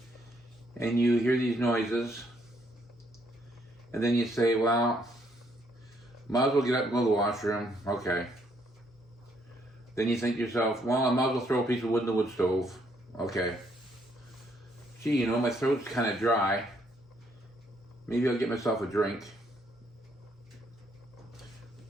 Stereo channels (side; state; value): both; normal; correlation 0.70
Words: and you hear these noises, and then you say, well, might as well get up and go to the washroom. Okay. Then you think to yourself, well, I might as well throw a piece of wood in the wood stove. Okay. Gee, my throat's kind of dry. Maybe I'll get myself a drink.